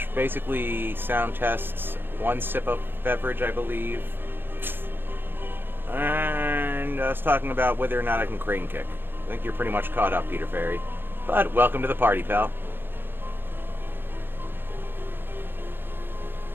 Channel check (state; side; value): late; left; 0.10 ms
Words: Basically, sound tests, one sip of beverage, I believe. And us talking about whether or not I can crane kick. I think you're pretty much caught up, Peter Ferry. But welcome to the party, pal.